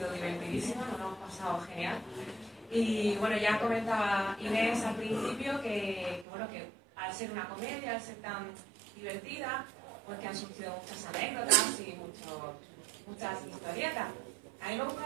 divertidísima, nos lo hemos pasado genial. Y bueno, ya comentaba Inés al principio que al ser una comedia, al ser tan divertida, pues que han surgido muchas anécdotas y muchas historietas. A mí me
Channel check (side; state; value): left; drops out; at 6.2 s